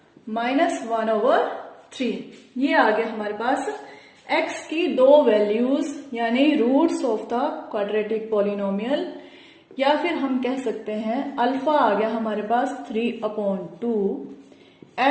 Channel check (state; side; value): identical; both; correlation 1.00